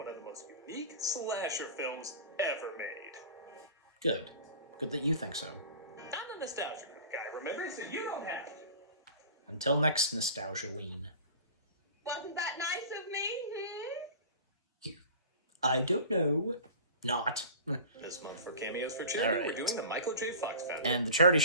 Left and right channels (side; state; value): both; inverted; correlation -0.38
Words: of the most unique slasher films ever made. Good. Good that you think so. I'm the nostalgia guy, remember? So you don't have to. Until next Nostalgia-ween. Wasn't that nice of me? I don't know. Not. This month for Cameos for Children, All right. we're doing the Michael J. Fox Foundation. And the charity